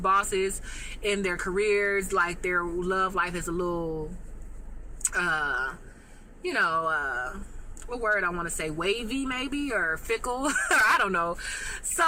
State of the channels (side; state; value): both; identical; correlation 1.00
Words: bosses in their careers, like their love life is a little what word I want to say, wavy maybe, or fickle, or I don't know.